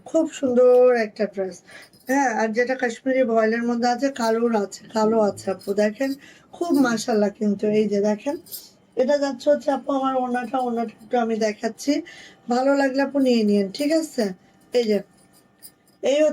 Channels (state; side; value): identical; both; correlation 1.00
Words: খুব সুন্দর একটা ড্রেস। হ্যাঁ, আর যেটা কাশ্মীরি ভয়েলের মধ্যে আছে, কালোর আছে, কালো আছে আপু, দেখেন, খুব মাশাল্লাহ। কিন্তু এই যে দেখেন, এটা যাচ্ছে হচ্ছে আপু আমার ওড়নাটা। ওড়নাটা একটু আমি দেখাচ্ছি, ভালো লাগলে আপু নিয়ে নিন। ঠিক আছে, এই যে এই